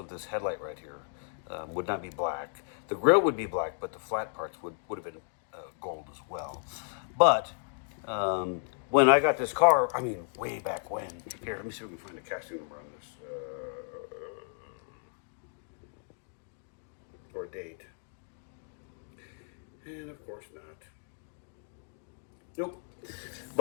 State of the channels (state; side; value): silent; right; 56 dB below the other